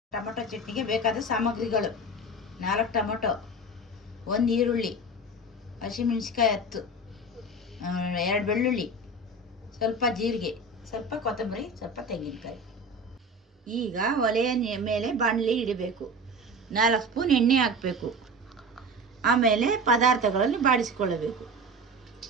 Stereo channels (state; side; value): normal; both; correlation 0.31